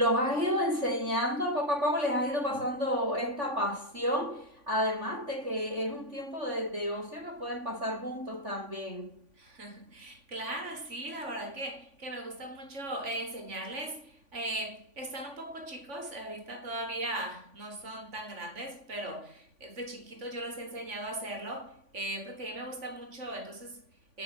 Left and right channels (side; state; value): left; late; 3.5 ms